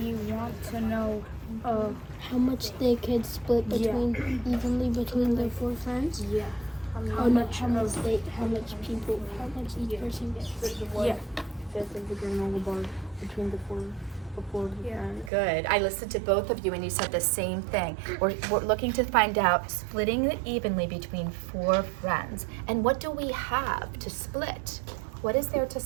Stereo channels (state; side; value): drops out; left; at 15.3 s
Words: want to know How much they could split evenly between their 4 friends? yeah. How much each person gets? Yeah. 1/5 of the granola bar between the four friends. Good. I listened to both of you and you said the same thing. We're looking to find out splitting it evenly between 4 friends. And what do we have to split? What is there to